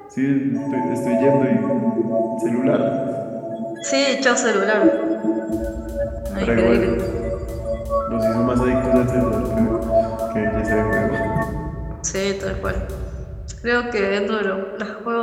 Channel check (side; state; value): both; identical; correlation 1.00